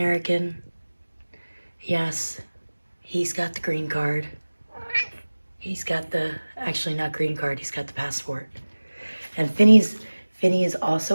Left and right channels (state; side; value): inverted; both; correlation -1.00